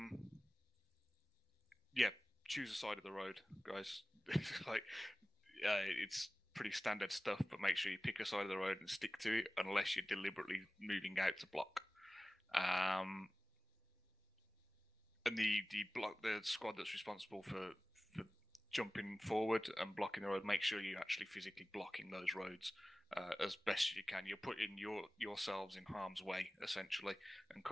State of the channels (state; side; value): normal; both; correlation 0.97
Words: choose a side of the road, guys. It's pretty standard stuff, but make sure you pick a side of the road and stick to it, unless you're deliberately moving out to block. And the squad that's responsible for jumping forward and blocking the road, make sure you're actually physically blocking those roads as best you can. You're putting yourselves in harm's way, essentially, and